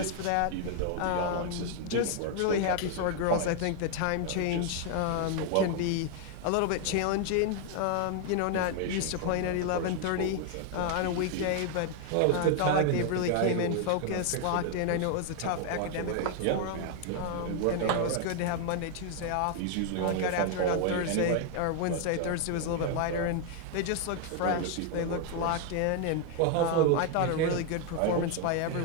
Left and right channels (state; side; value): different; both; correlation 0.00